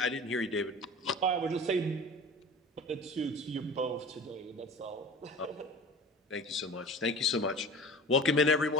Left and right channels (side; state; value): both; normal; correlation 0.37